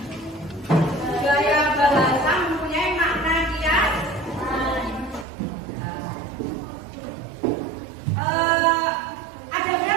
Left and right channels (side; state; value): left; drops out; at 5.2 s